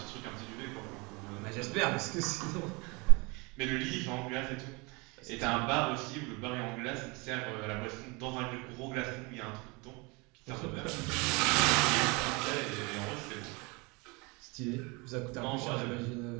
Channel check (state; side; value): quieter; left; 27.6 dB